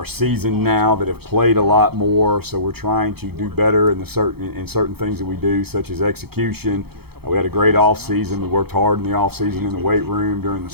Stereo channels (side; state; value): left; late; 0.96 ms